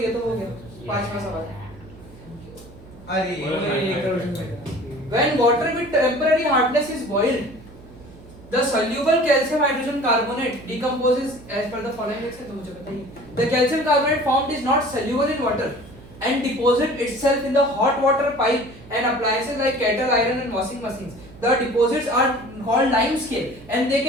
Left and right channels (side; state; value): right; noise; hum, 20 dB below the sound